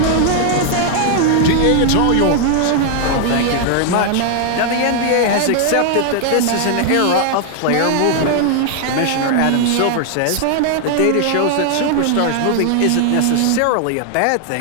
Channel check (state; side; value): different; both; correlation 0.00